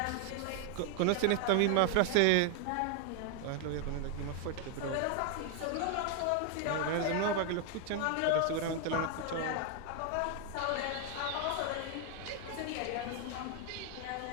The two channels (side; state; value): both; different; correlation 0.00